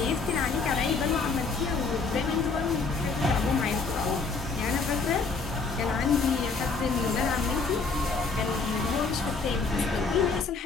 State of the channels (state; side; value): quieter; right; 4.4 dB